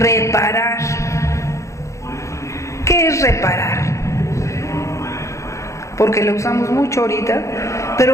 ¿Qué es reparar? Porque la usamos mucho ahorita,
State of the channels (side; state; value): right; late; 0.15 ms